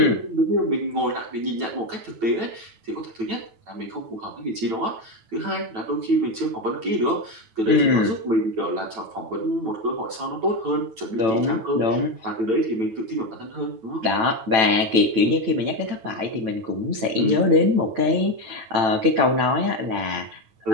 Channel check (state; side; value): late; left; 9.0 ms